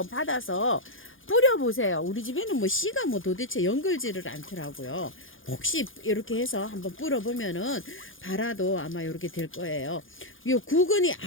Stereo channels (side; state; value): right; late; 0.58 ms